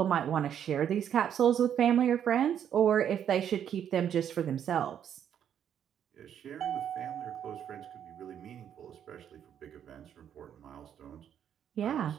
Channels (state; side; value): quieter; left; 9.2 dB